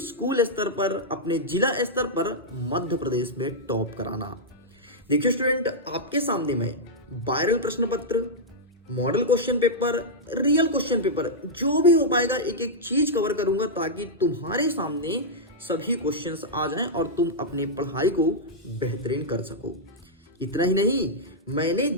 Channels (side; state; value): both; normal; correlation -0.08